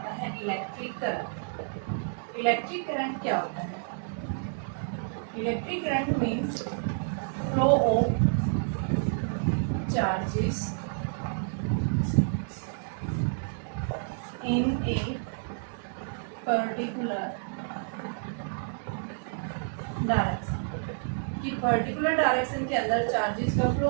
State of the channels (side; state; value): left; silent; digital silence